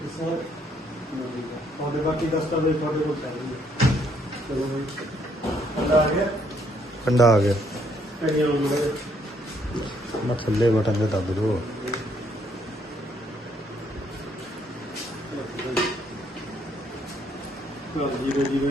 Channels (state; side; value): normal; both; correlation 0.69